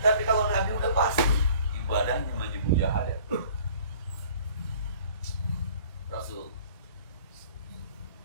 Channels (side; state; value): both; inverted; correlation -0.51